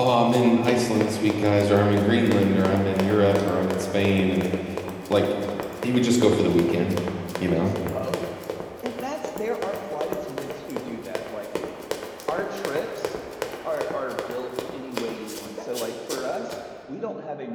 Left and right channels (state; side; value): identical; both; correlation 1.00